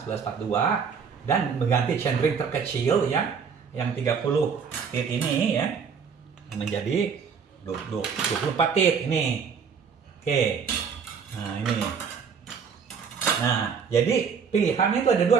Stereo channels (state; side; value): quieter; left; 6.3 dB